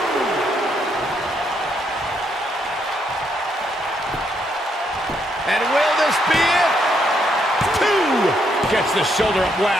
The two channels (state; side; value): normal; both; correlation 0.75